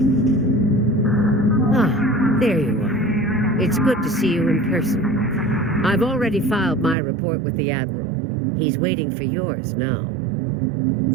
There you are. It's good to see you in person. I've already filed my report with the Admiral. He's waiting for yours now.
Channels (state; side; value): drops out; left; at 7.0 s